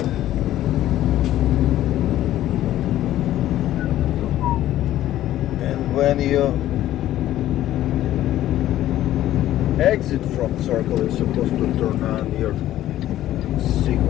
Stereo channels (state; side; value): quieter; right; 13.4 dB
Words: And when you exit from circle, you're supposed to turn on your